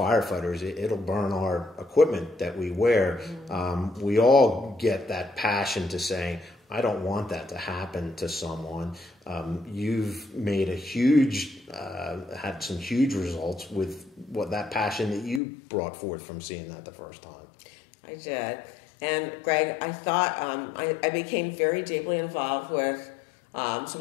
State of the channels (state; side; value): drops out; right; at 15.4 s